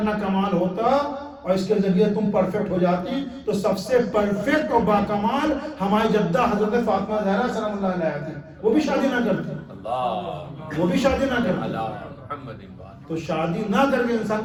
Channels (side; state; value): both; identical; correlation 1.00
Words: کمال ہوتا اور اس کے ذریعے تم پرفیکٹ ہو جاتی تو سب سے پرفیکٹ اور باکمال ہماری جدہ حضرت فاطمہ زہرا سلام اللہ علیہ تھی. وہ بھی شادی نہ کرتی، وہ بھی شادی نہ کرتی. تو شادی نہ کر کے انسان